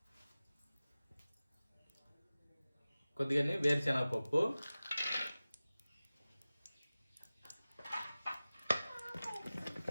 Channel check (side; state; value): both; inverted; correlation -0.97